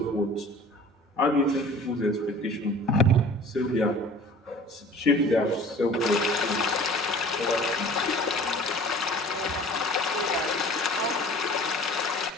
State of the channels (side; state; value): both; normal; correlation 0.46